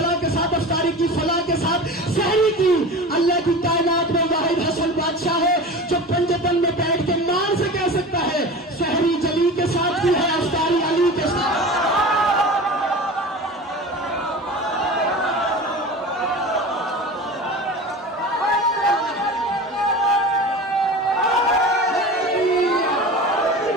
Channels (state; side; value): normal; both; correlation 0.33